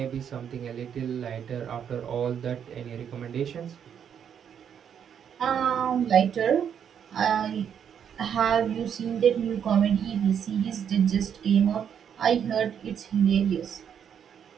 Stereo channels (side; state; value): left; quieter; 8.3 dB